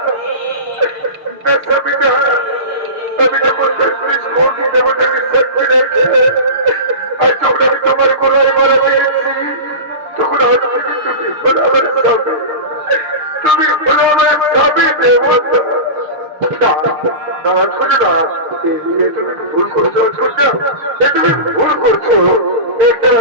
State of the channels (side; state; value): left; late; 6.6 ms